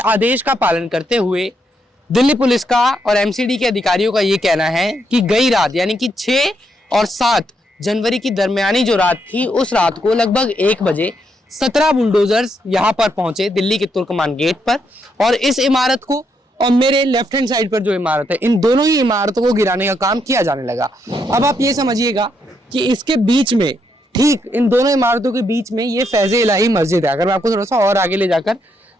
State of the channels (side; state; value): both; normal; correlation 0.78